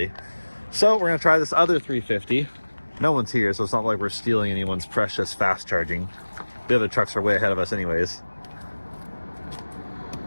So we're gonna try this other 350 no one's here, so it's not like we're stealing anyone's precious fast charging. The other trucks are way ahead of us anyways.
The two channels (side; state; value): both; inverted; correlation -1.00